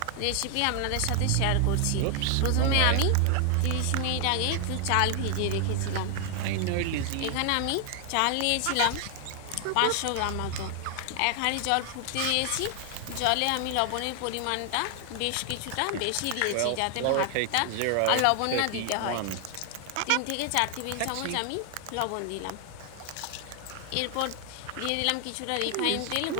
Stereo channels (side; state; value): both; different; correlation 0.00